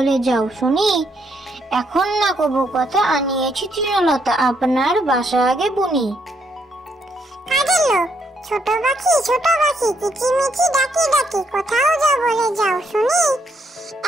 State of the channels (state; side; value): normal; both; correlation 0.74